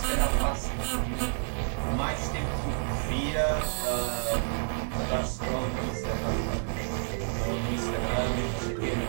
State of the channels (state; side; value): silent; left; digital silence